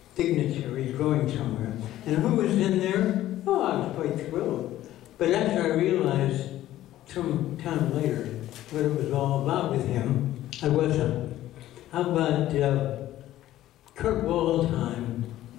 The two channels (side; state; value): right; quieter; 13.9 dB